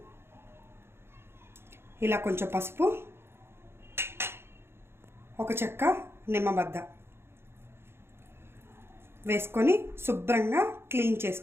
ఇలా కొంచెం పసుపు, ఒక చెక్క నిమ్మబద్ద వేసుకొని శుభ్రంగా క్లీన్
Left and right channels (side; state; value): left; late; 0.12 ms